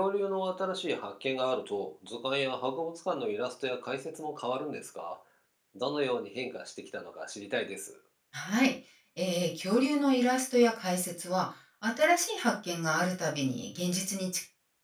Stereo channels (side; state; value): both; identical; correlation 1.00